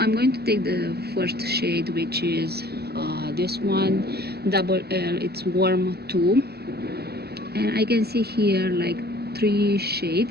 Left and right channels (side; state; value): left; late; 0.47 ms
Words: going to take the first shade, which is this one, double L. It's warm 2, and I can see here like 3